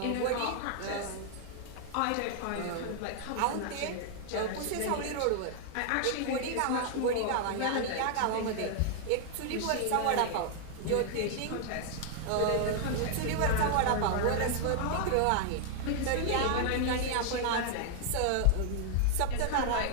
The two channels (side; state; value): both; different; correlation 0.00